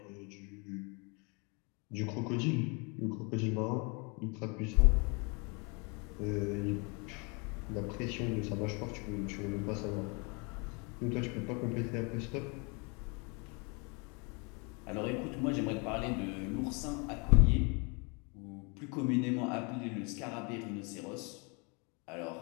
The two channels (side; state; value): right; quieter; 32.0 dB